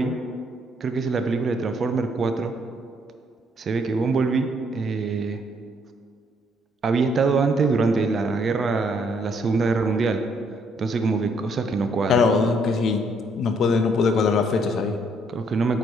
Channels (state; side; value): normal; both; correlation 0.69